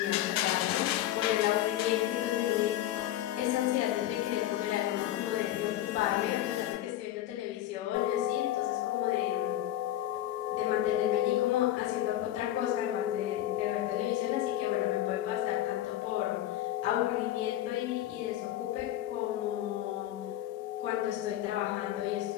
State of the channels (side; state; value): right; quieter; 13.3 dB